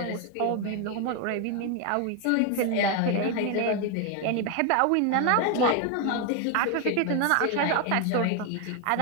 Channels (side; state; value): both; different; correlation 0.01